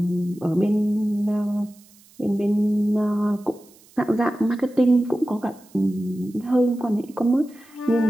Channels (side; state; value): right; noise; hiss, 28 dB below the sound